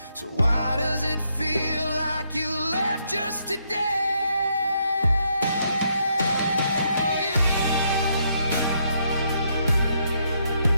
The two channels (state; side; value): inverted; both; correlation -0.75